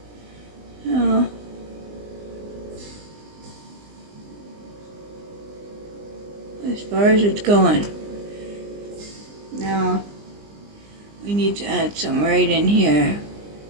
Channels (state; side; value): late; left; 20 ms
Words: So, as far as it's going. Now, we need to add some right in here.